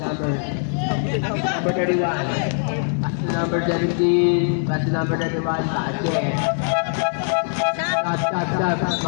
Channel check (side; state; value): right; silent; 64 dB below the other